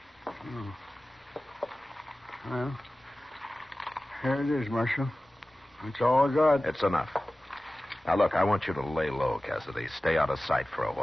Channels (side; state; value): both; normal; correlation 0.97